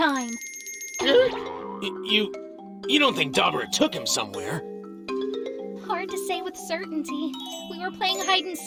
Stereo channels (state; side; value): identical; both; correlation 1.00